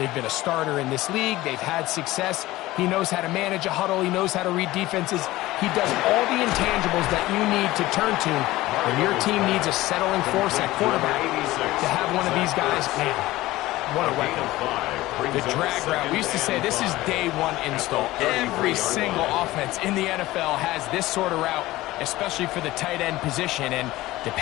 been a starter in this league. They've had success. He knows how to manage a huddle. He knows how to read defenses. He does all the intangibles that you need to turn to when your team needs a settling force at quarterback. To have one of these guys, man, what a weapon. The drag route. We used to say this is day 1 install. Every single offense in the NFL has this sort of route, especially for the tight end position. And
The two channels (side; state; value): right; quieter; 17.6 dB